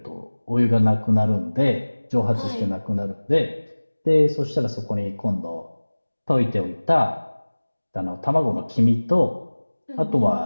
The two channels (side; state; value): both; inverted; correlation -1.00